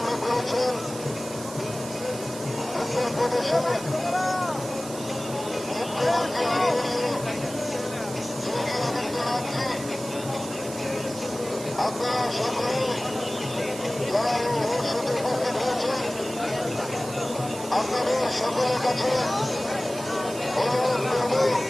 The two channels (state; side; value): noise; right; hiss, 12 dB below the sound